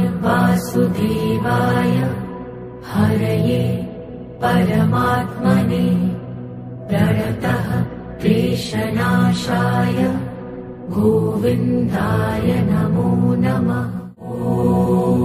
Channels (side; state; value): both; identical; correlation 1.00